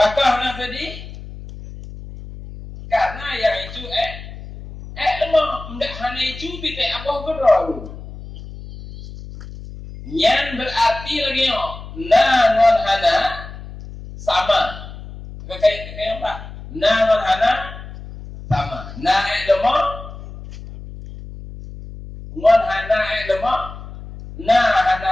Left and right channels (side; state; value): left; noise; hum, 13 dB below the sound